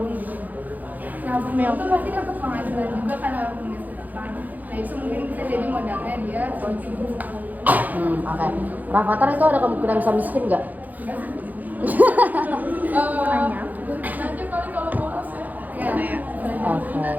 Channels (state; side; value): late; left; 0.082 ms